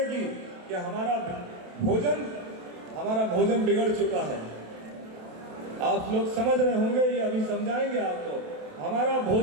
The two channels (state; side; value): late; left; 27 ms